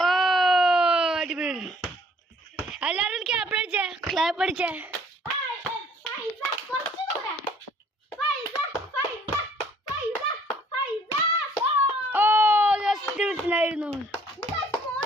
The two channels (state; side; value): normal; both; correlation 0.59